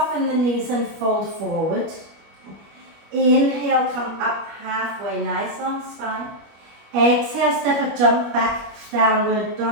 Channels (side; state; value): left; late; 25 ms